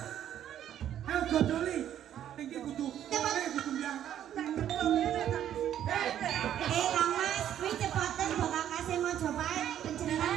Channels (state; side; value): quieter; left; 10.7 dB